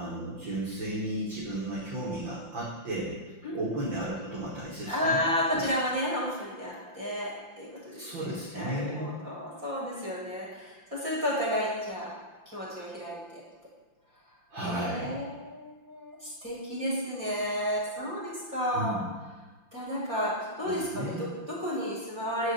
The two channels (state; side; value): late; left; 5.8 ms